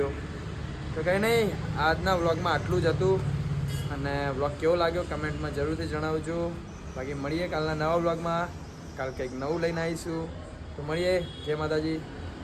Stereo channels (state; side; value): identical; both; correlation 1.00